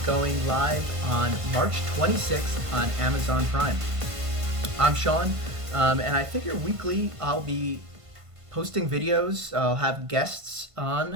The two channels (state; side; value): late; left; 1.5 ms